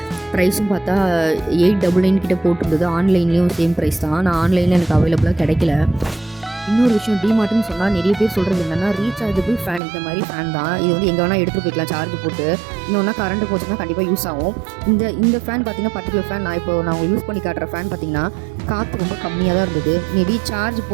ப்ரைஸும் பார்த்தா 899 கிட்டே போட்டிருந்தது. ஆன்லைன்லேயும் சேம் ப்ரைஸ் தான். நான் ஆன்லைனில் எனக்கு அவைலபிளாக கிடைக்கல. இன்னொரு விஷயம், டிமார்ட்னு சொன்னால் நிறைய பேர் சொல்கிறது என்னென்னா ரீசார்ஜபிள் ஃபேன். இந்த மாதிரி ஃபேன் தான். இது வந்து எங்கே வேணால் எடுத்துகிட்டு போய்க்கலாம் சார்ஜ் போட்டு. இன்னொன்னா கரண்ட் போச்சுன்னா கண்டிப்பாக யூஸ் ஆகும். இந்த ஃபேன் பார்த்திங்கன்னா பர்டிகுலர் ஃபேன் நான் உங்களுக்கு யூஸ் பண்ணி காட்டுற ஃபேன் பார்த்திங்கன்னா காற்று ரொம்ப கம்மியாக தான் இருந்தது. மேபி சார்ஜ்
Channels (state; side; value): drops out; left; at 9.8 s